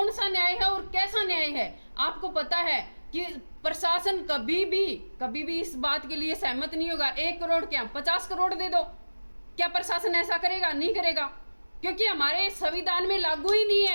सा न्याय है और कैसा न्याय है? आपको पता है कि प्रशासन कभी भी इस बात के लिए सहमत नहीं होगा। 1 करोड़ क्या 50 करोड़ दे दो, क्या प्रशासन ऐसा करेगा? नहीं करेगा, क्योंकि हमारे संविधान में लागू ही नहीं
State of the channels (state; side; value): inverted; both; correlation -1.00